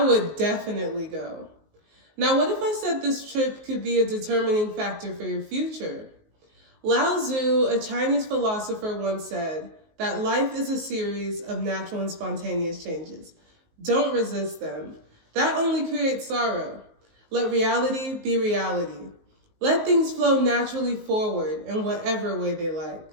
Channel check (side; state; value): left; late; 19 ms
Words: would definitely go. Now, what if I said this trip could be a determining factor for your future? Lao Tzu, a Chinese philosopher, once said that life is a series of natural and spontaneous changes. Don't resist them. That only creates sorrow. Let reality be reality. Let things flow naturally forward in whatever way they like.